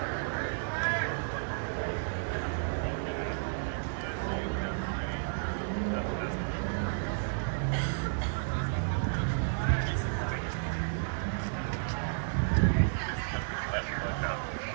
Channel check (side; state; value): left; silent; digital silence